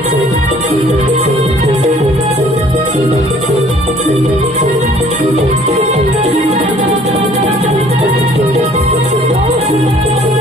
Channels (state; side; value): normal; both; correlation 0.56